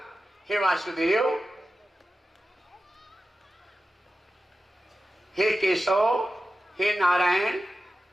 हे वासुदेव, हे केशव, हे नारायण,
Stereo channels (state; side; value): normal; both; correlation 0.93